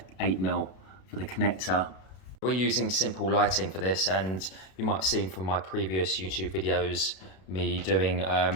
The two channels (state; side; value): late; right; 32 ms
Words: 8mm for the connector. We're using simple lighting for this, and you might have seen from my previous YouTube videos me doing